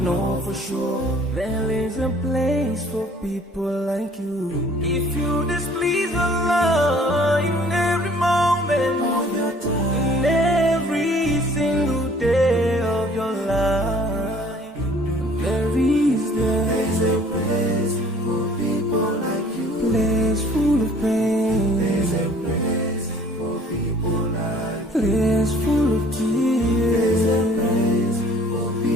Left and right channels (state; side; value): normal; both; correlation 0.54